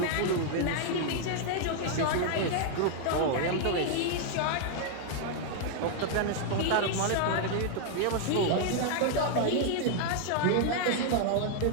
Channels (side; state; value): both; different; correlation 0.00